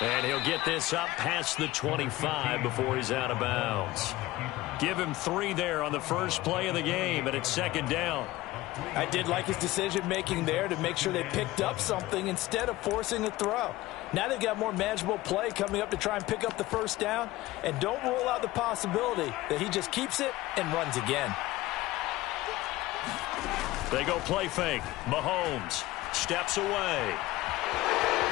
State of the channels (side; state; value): right; quieter; 17.8 dB